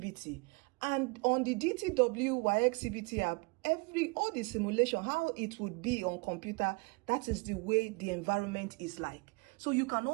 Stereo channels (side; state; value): left; quieter; 29.6 dB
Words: And on the DTW WAEC CBT app, all the simulation, how it would be on computer, that is the way the environment is like. So you can